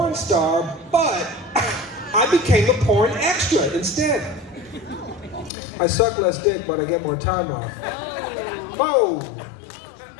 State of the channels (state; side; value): drops out; right; at 5.5 s